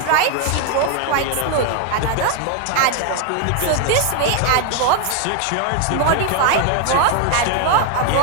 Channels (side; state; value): both; different; correlation 0.01